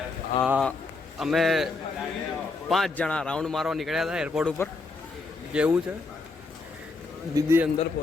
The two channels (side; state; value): right; quieter; 3.8 dB